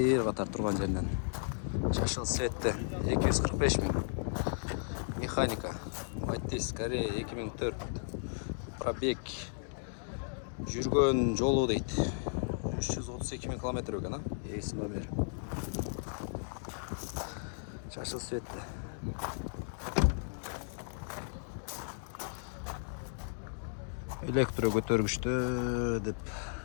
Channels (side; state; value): right; silent; digital silence